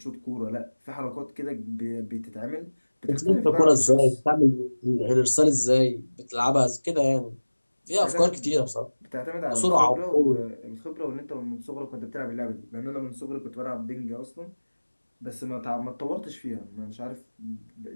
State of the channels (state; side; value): inverted; both; correlation -1.00